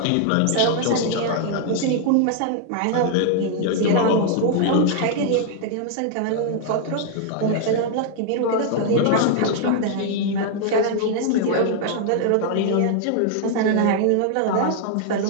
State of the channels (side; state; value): both; different; correlation 0.00